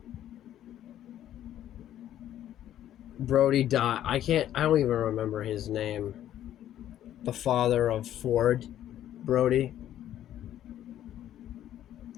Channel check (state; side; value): quieter; right; 11.7 dB